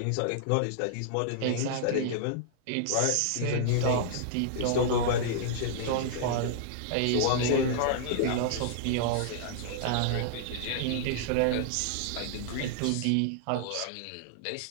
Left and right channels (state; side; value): different; both; correlation -0.01